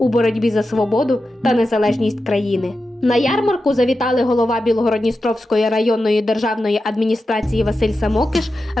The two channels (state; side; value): normal; both; correlation 0.91